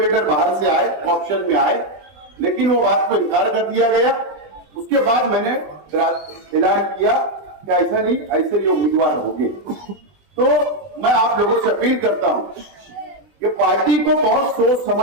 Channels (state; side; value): late; left; 20 ms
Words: बाहर से आए, ऑप्शन में आए, लेकिन वो बात को इनकार कर दिया गया। उसके बाद मैंने ऐलान किया कि ऐसा नहीं, ऐसे ये उम्मीदवार होंगे। तो मैं आप लोगों से अपील करता हूं कि पार्टी को बहुत सोच